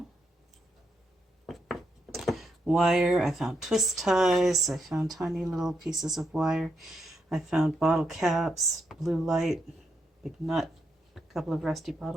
Wire, I found twist ties, I found tiny little pieces of wire, I found bottle caps, blue light, big nut, a couple of rusty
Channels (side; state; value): both; normal; correlation 0.80